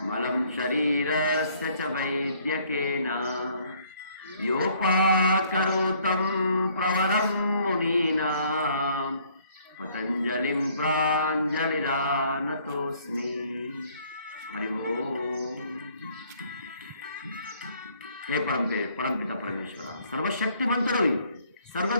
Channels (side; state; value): both; inverted; correlation -0.62